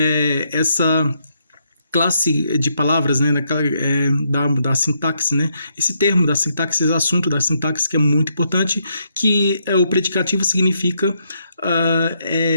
essa classe de palavras, né, da sintaxe, né? Esse termo da sintaxe, esse assunto da sintaxe que é muito importante, que o predicativo significa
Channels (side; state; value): both; inverted; correlation -0.76